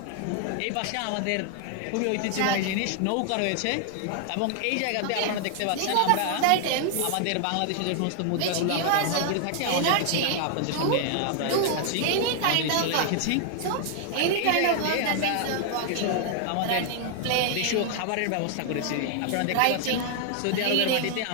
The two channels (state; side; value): different; both; correlation 0.00